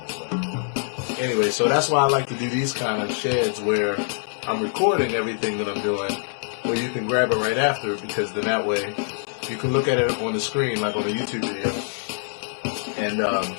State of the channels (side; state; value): right; silent; 62 dB below the other